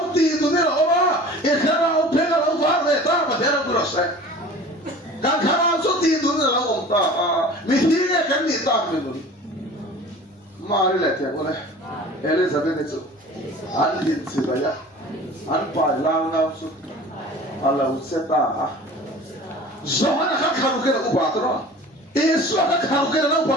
thì tụi nó là cái khả năng phải là lâu vào về ta mà thế nào cũng được cái khả năng số thì tụi nó là ông ta mình thi cái gì ta mình mà đi lại thế này Elizabeth itu anh hin si baya anh phải lang nào số Allah sẽ ta Zohana kan karu kena upatra, Yesus kan karu kena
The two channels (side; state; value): both; normal; correlation 0.42